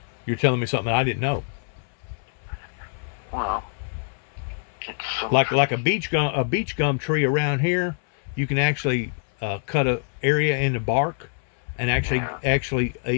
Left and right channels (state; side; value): silent; right; 60 dB below the other